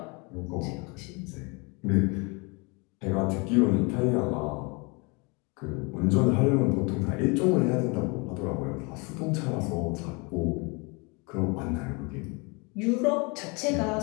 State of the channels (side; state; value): right; quieter; 29.8 dB